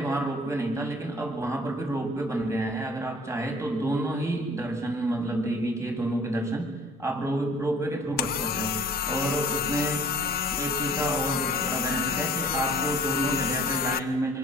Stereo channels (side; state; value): both; normal; correlation 0.52